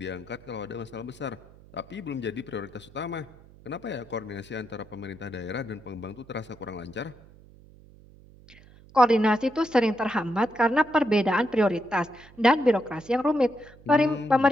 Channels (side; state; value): right; noise; hum, 24 dB below the sound